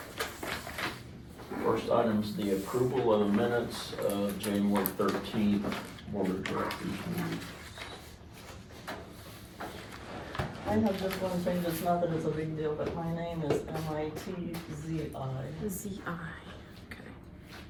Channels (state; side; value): identical; both; correlation 1.00